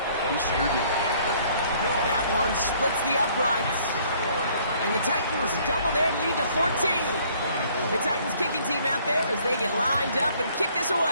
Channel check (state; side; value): inverted; both; correlation -0.61